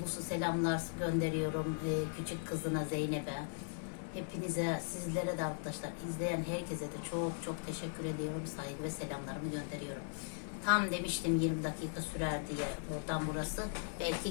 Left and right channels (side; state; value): right; silent; digital silence